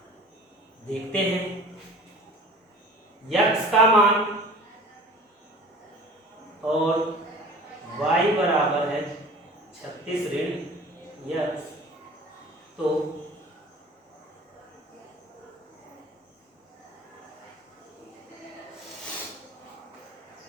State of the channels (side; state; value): both; normal; correlation 0.43